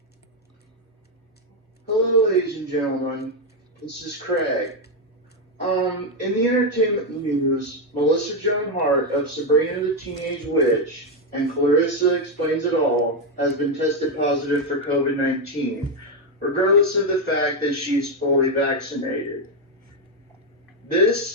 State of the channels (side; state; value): both; normal; correlation 0.04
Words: Hello, ladies and gentlemen. This is Craig. In the entertainment news, Melissa Joan Hart of Sabrina the Teenage Witch and Clarissa Explains It All has been tested positive for COVID-19, regardless of the fact that she's fully vaccinated.